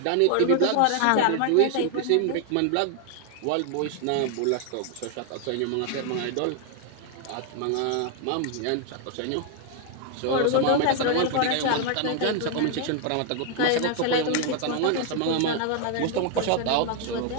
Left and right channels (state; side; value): different; both; correlation 0.00